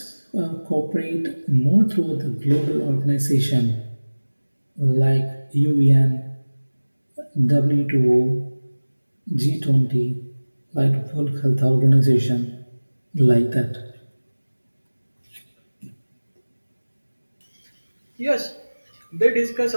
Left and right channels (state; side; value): inverted; both; correlation -1.00